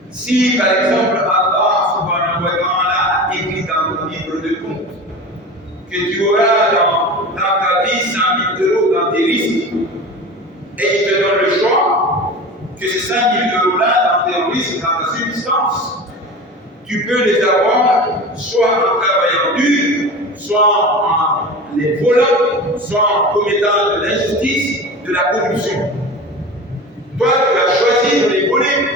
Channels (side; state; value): both; normal; correlation 0.32